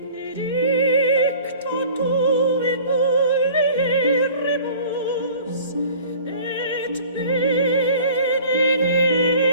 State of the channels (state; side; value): inverted; both; correlation -0.46